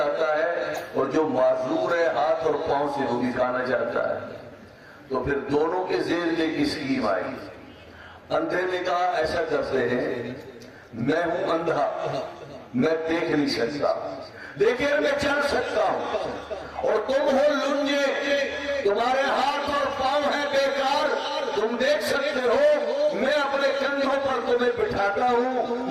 ہے اور جو معذور ہے ہاتھ اور پاؤں سے وہ بھی کھانا چاہتا ہے۔ تو پھر دونوں کے ذہن میں ایک اسکیم آئی۔ اندھے نے کہا ایسا کرتے ہیں، میں ہوں اندھا، میں دیکھ نہیں سکتا لیکن میں چل سکتا ہوں، اور تم ہو لنجے، تمہارے ہاتھ اور پاؤں ہیں بیکار، تم دیکھ سکتے ہو، میں اپنے کندھوں پر تمہیں بٹھاتا ہوں،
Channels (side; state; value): both; identical; correlation 1.00